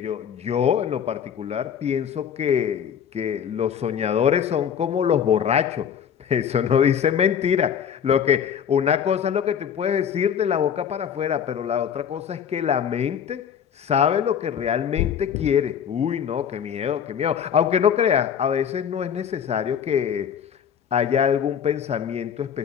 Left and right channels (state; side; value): quieter; right; 8.2 dB